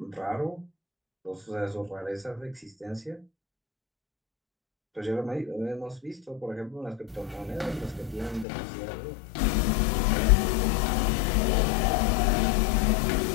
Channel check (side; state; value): right; drops out; at 8.5 s